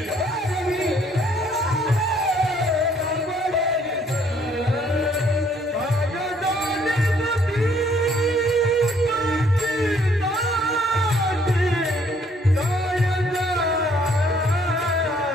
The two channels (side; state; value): both; normal; correlation 0.64